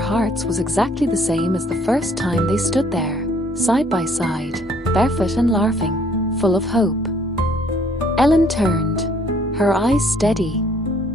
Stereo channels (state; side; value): normal; both; correlation 0.62